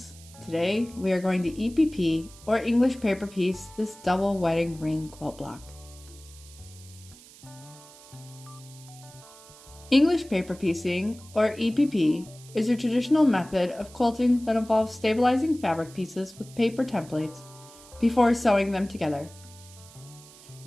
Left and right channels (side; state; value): right; noise; hiss, 21 dB below the sound